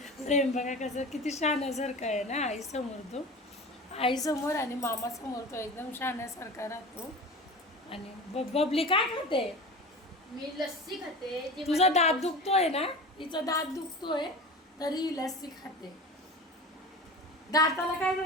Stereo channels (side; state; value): both; normal; correlation 0.34